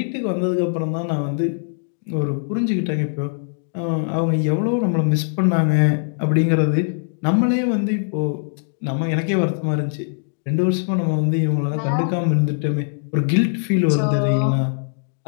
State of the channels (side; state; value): right; silent; digital silence